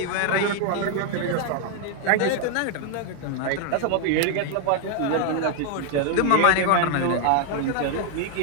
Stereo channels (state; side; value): different; both; correlation 0.00